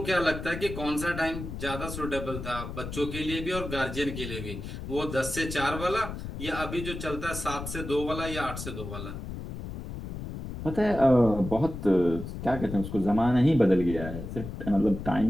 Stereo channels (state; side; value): noise; left; rumble, 8 dB below the sound